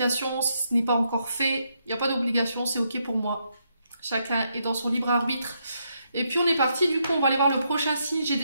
si ce n'est pas encore fait. Il n'y a pas d'obligation, c'est ok pour moi. Chacun est dans son libre arbitre. Et puis on est parti, du coup on va aller voir le prochain signe. J'ai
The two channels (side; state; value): both; inverted; correlation -0.78